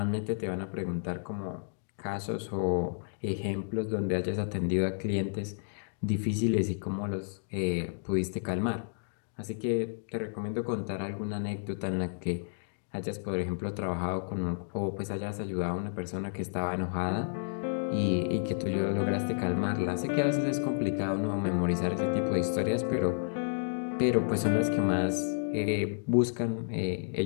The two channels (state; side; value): silent; right; digital silence